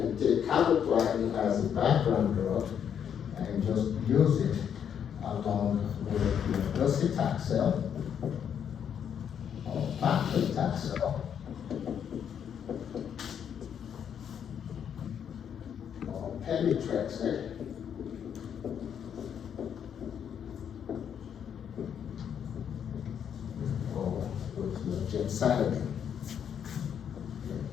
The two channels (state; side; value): quieter; right; 8.4 dB